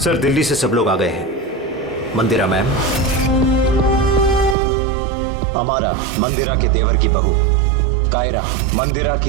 सर दिल्ली से सब लोग आ गए हैं। मंदिरा मैम, अमारा मंदिरा के देवर की बहू, कायरा मंदिरा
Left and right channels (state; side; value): drops out; left; at 4.5 s